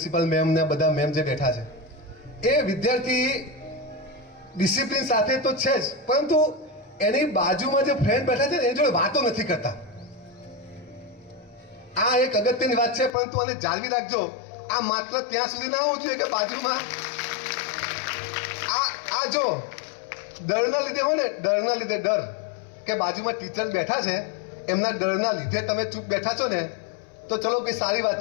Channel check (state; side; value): drops out; right; at 13.1 s